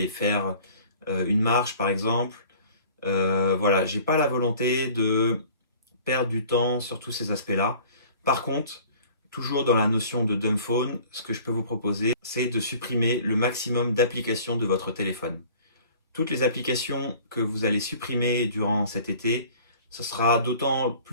faire une marche par exemple. Voilà, j'ai pas la volonté de perdre du temps sur tous ces aspects-là. Par contre, toujours dans la notion de dumb phone, ce que je peux vous proposer, c'est de supprimer le maximum d'applications de votre téléphone. Toutes les applications que vous allez supprimer durant cet été, ce sera d'autant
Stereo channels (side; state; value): both; inverted; correlation -0.48